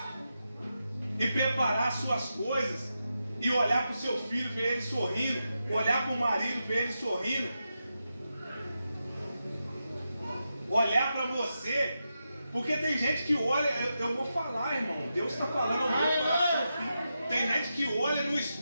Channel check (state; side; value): inverted; both; correlation -0.88